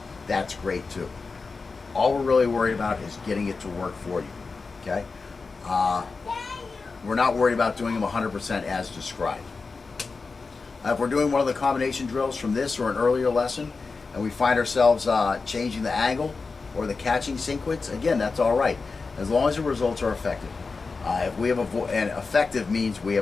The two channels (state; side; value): quieter; right; 4.3 dB